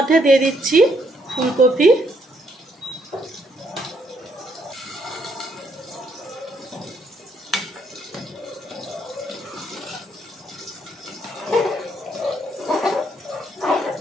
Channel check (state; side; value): normal; both; correlation 0.72